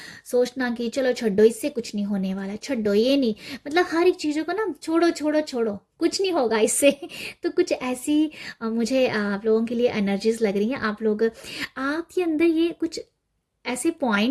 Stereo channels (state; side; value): identical; both; correlation 1.00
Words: सोचना कि चलो छोड़ो, इससे कुछ नहीं होने वाला, छोड़ो ये नहीं, मतलब हर एक चीज़ों को ना छोड़ो छोड़ो छोड़ो, कुछ नहीं होगा इससे। तो कुछ ऐसी मुझे आप लोगों के लिए एनर्जीज लग रही हैं। आप लोग, आपके अंदर ये कुछ ऐसे